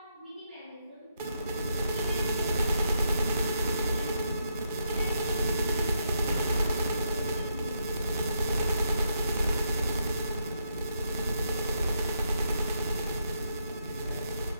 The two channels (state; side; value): inverted; both; correlation -0.78